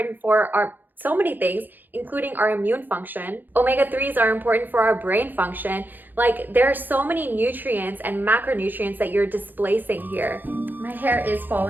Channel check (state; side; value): late; left; 0.088 ms